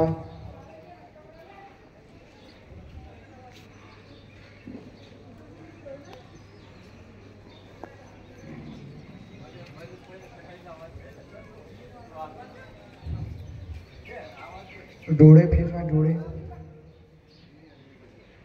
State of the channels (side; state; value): both; identical; correlation 1.00